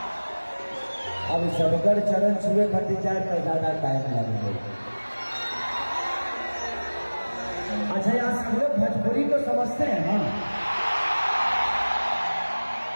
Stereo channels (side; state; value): both; inverted; correlation -1.00